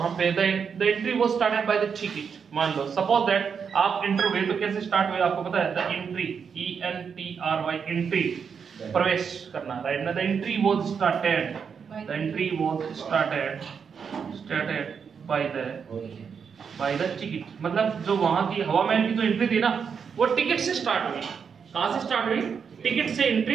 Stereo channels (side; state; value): left; quieter; 6.5 dB